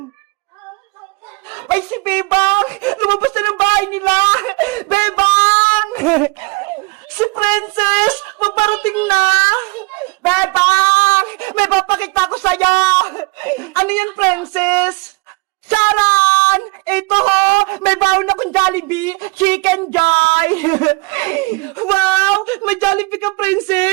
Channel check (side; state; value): left; quieter; 27.2 dB